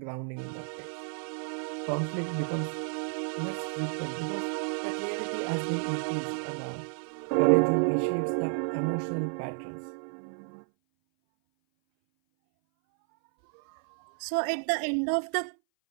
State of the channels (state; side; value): silent; left; 57 dB below the other